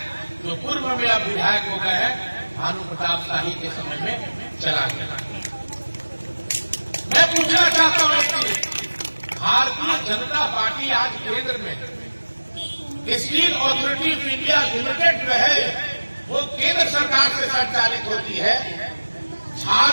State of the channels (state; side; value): inverted; both; correlation -1.00